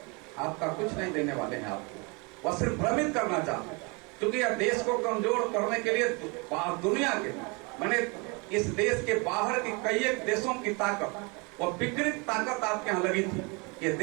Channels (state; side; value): quieter; left; 30.2 dB